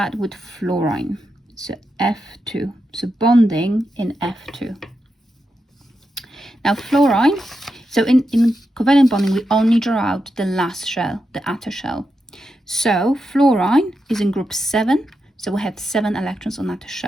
with fluorine. So F2, so bonding in F2. Now fluorine, so in covalent bonding, we only draw out the last shell, the outer shell. So fluorine is in group 7, so we have 7 electrons on outer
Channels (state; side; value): normal; both; correlation 0.87